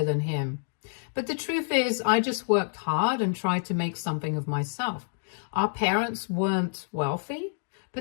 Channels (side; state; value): right; silent; digital silence